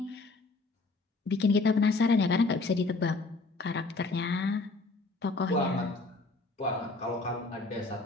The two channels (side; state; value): right; quieter; 3.5 dB